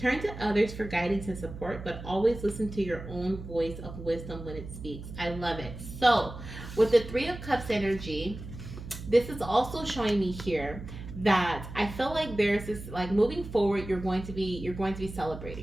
to others for guidance and support, but always listen to your own voice of wisdom when it speaks. I love it. So with the Three of Cups energy, this is also showing me here that I feel like there's this, like, moving forward, you're going to be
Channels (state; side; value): noise; right; hum, 11 dB below the sound